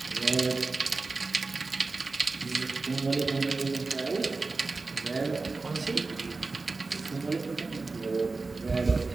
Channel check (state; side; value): quieter; left; 3.9 dB